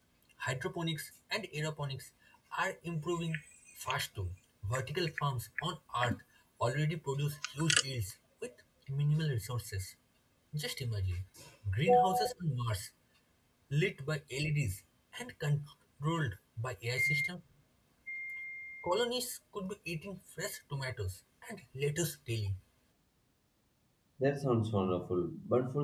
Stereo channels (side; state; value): both; identical; correlation 1.00